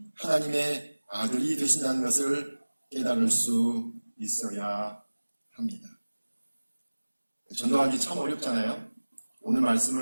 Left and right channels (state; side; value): inverted; both; correlation -1.00